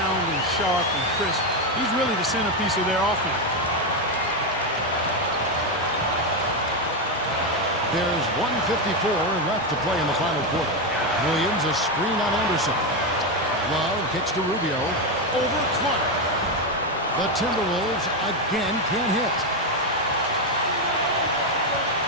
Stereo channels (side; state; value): both; normal; correlation 0.08